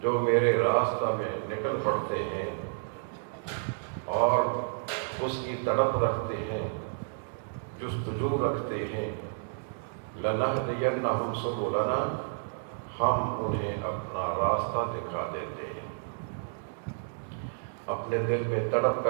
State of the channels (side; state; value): left; silent; digital silence